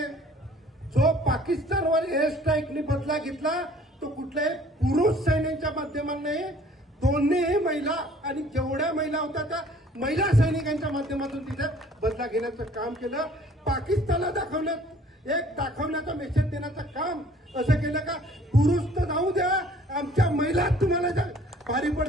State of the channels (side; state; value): both; normal; correlation 0.55